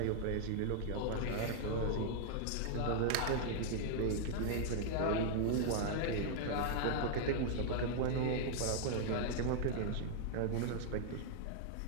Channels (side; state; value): both; different; correlation -0.01